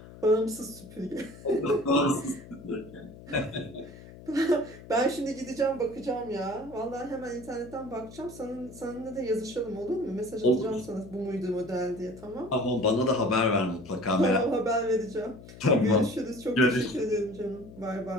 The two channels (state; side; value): noise; left; hum, 17 dB below the sound